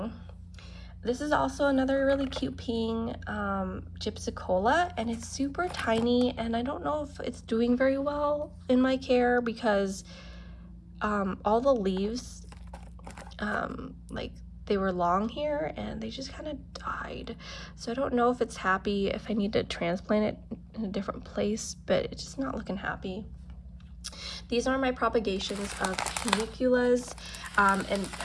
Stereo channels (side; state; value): both; identical; correlation 1.00